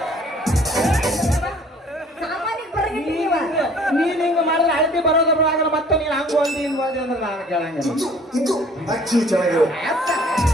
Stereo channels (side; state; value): both; normal; correlation 0.53